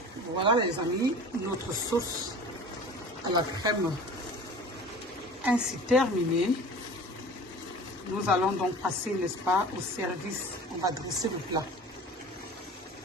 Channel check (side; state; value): both; normal; correlation 0.40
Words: Voilà les amis, notre sauce à la crème ainsi terminée. Nous allons donc passer, n'est-ce pas, au service. On va dresser le plat.